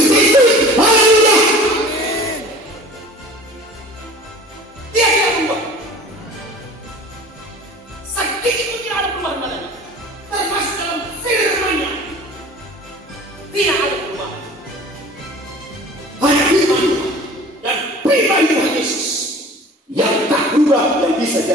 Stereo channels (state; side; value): normal; both; correlation 0.43